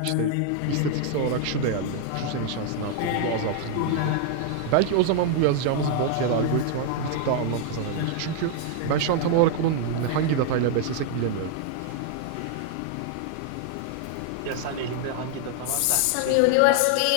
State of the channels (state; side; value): different; both; correlation 0.00